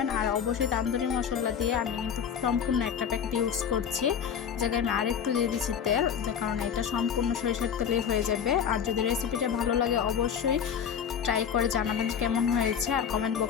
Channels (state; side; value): quieter; right; 7.9 dB